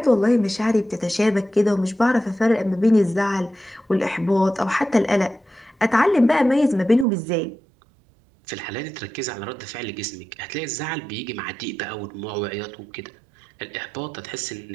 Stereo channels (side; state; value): left; drops out; at 7.1 s